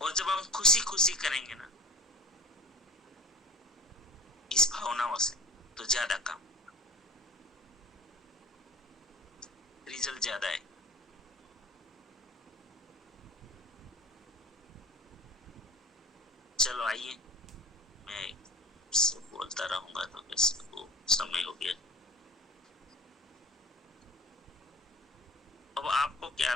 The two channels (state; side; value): normal; both; correlation 0.40